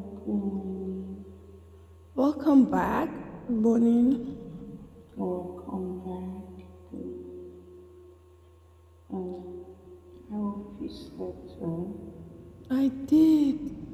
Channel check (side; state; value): both; identical; correlation 1.00